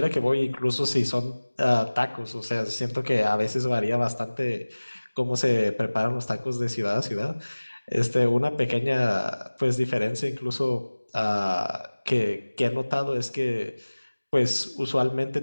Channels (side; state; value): both; inverted; correlation -1.00